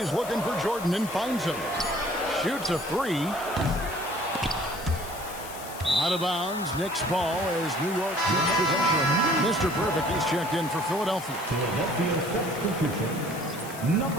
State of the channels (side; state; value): left; noise; hiss, 14 dB below the sound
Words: looking for Jordan and finds him. Shoots a 3. Out of bounds. Knicks ball as New York gets possession. Mr. Perfect is checked in for Philadelphia. Philadelphia substitution.